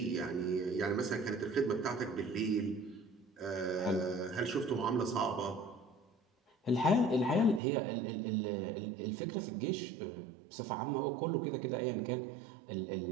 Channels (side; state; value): left; drops out; at 7.6 s